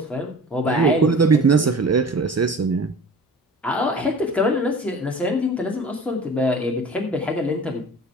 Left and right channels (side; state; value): both; normal; correlation 0.41